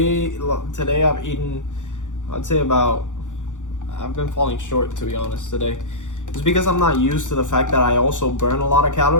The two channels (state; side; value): late; right; 0.86 ms